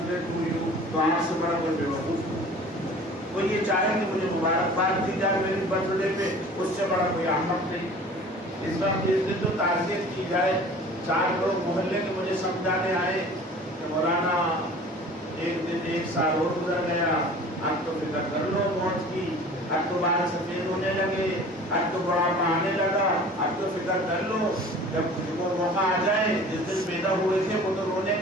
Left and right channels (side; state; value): both; normal; correlation 0.44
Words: ڈے ٹو یو، تو آپ سے بڑا کوئی بے وقوف نہیں۔ کوئی یہ چاہے کہ مجھے مبارکباد دی جائے میرے برتھ ڈے پہ، اس سے بڑا کوئی احمق نہیں۔ اس وقت اس دن تو تعزیت کی جائے۔ 4 لوگ محلے کے مجھے سمجھانے آئے کہ مولانا ایک دن 1 سال اور گزر گیا، اب تو فکر کر لو موت کی، اب تو بال سفید ہونے لگے، اب تو بڑھاپا آنے لگا، اب تو فکر کر لو جب وہ موقع آ جائے۔ جس دن پیدا ہوئے تھے وہ تو رونے